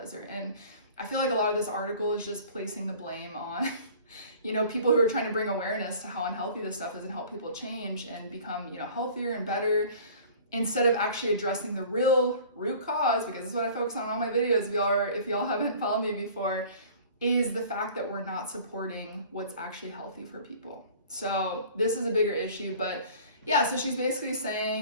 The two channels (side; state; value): both; inverted; correlation -0.47